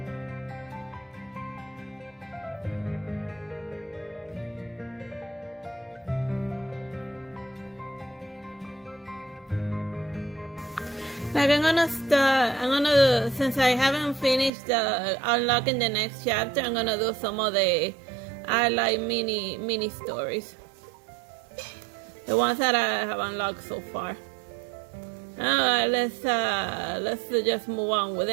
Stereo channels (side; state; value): left; drops out; at 14.5 s